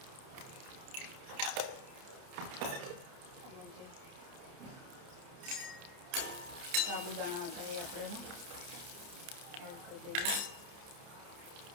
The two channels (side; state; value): left; late; 30 ms